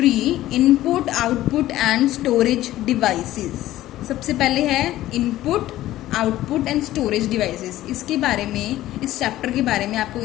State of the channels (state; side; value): quieter; right; 14.8 dB